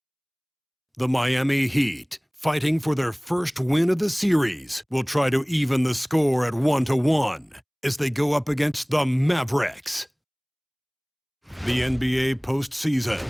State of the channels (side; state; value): both; identical; correlation 1.00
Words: The Miami Heat, fighting for their first win of the series, will try to even the score at 1-1 as they go up against the Mavericks. The NBA postseason,